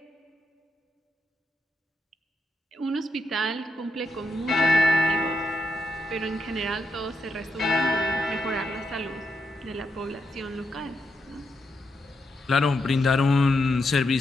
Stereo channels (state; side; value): normal; both; correlation 0.82